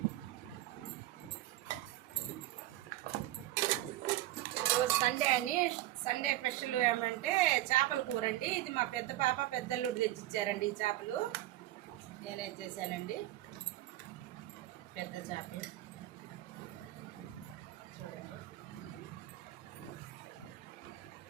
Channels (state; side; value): quieter; left; 15.6 dB